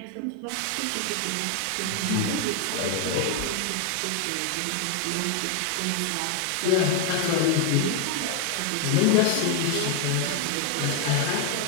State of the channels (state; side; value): different; both; correlation 0.01